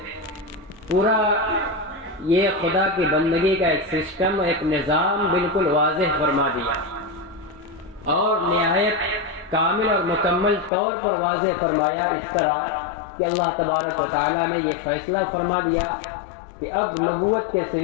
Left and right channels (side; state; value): right; drops out; at 10.7 s